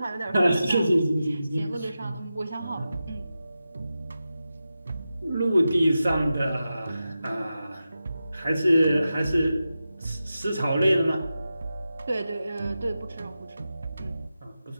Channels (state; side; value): inverted; both; correlation -0.92